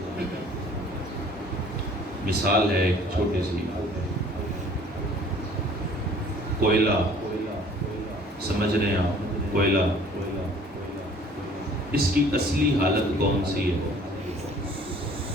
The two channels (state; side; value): normal; both; correlation 0.53